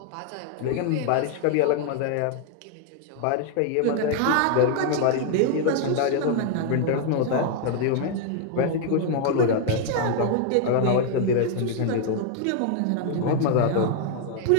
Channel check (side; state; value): both; different; correlation 0.00